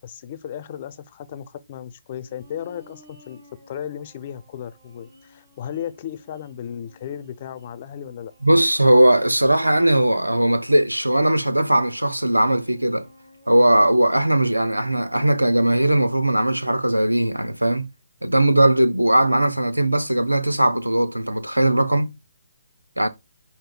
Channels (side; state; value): both; inverted; correlation -0.96